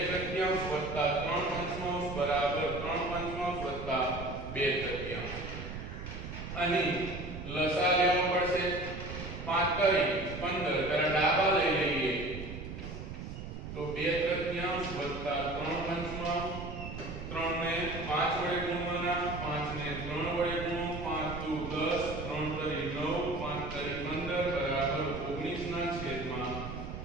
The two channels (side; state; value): right; noise; rumble, 8 dB below the sound